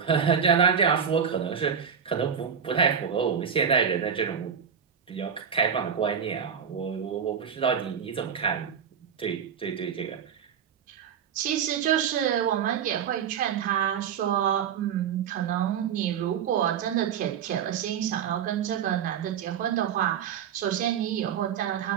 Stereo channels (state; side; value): quieter; left; 7.6 dB